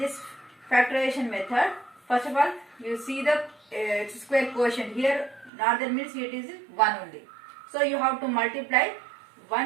factorization method, first of all, you see the x square quotient here, not that means it is 1 only. So you have to multiply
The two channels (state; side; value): drops out; left; at 5.5 s